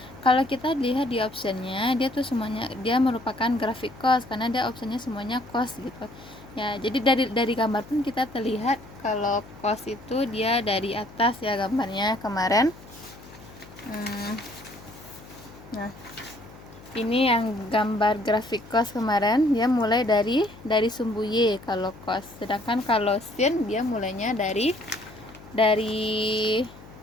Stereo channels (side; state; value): left; noise; hum, 20 dB below the sound